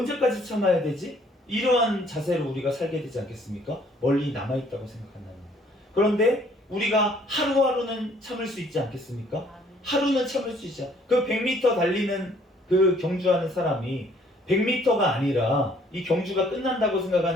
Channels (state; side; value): normal; both; correlation 0.61